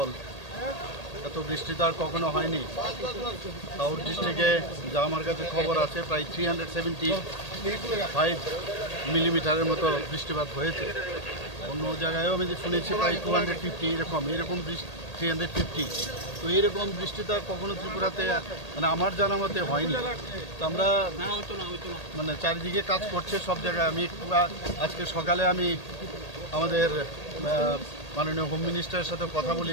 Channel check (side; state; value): right; late; 1.8 ms